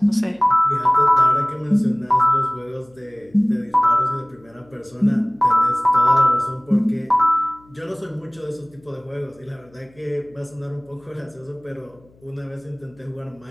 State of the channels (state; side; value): noise; left; hum, 29 dB below the sound